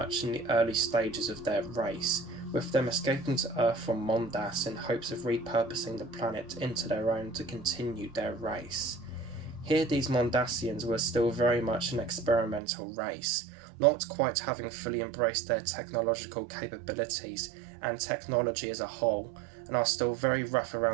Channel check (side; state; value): left; drops out; at 12.6 s